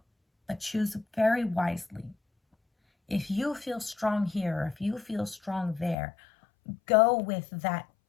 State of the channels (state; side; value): drops out; right; at 6.0 s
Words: But choose very wisely. If you feel strong here, or if you feel strong there, go with that